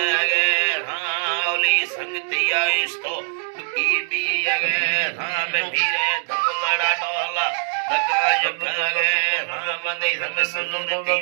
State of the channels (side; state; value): left; silent; digital silence